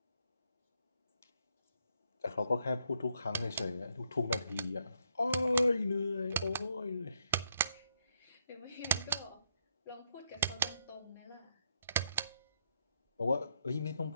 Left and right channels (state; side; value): inverted; both; correlation -0.75